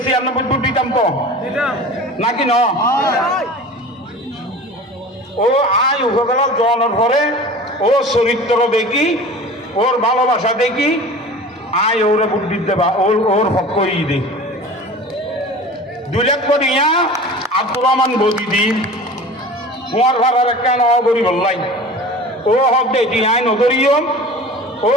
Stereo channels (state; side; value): normal; both; correlation 0.38